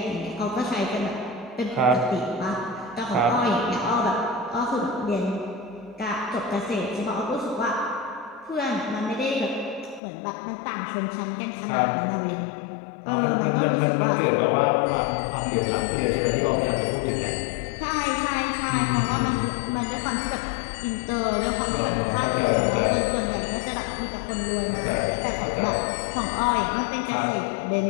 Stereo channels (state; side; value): drops out; right; at 10.0 s